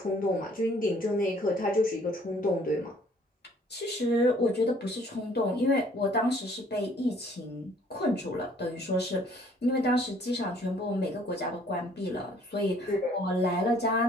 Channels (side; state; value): both; normal; correlation 0.59